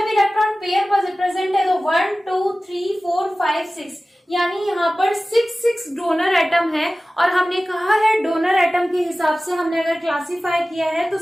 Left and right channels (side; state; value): both; normal; correlation 0.96